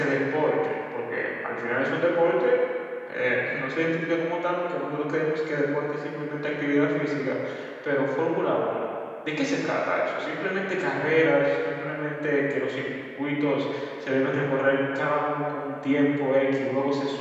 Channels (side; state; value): both; identical; correlation 1.00